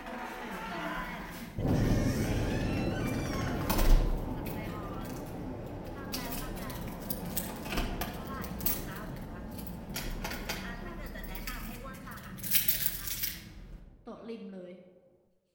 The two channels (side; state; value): both; identical; correlation 1.00